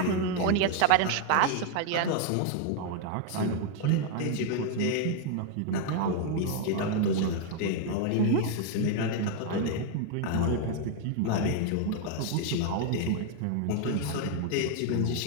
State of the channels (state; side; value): different; both; correlation 0.00